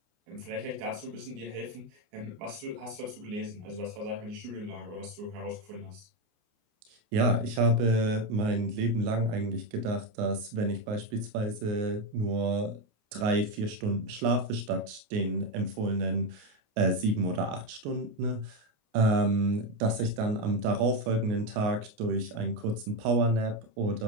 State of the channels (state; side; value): late; left; 28 ms